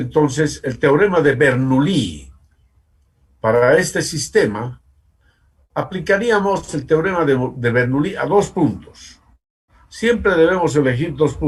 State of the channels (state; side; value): identical; both; correlation 1.00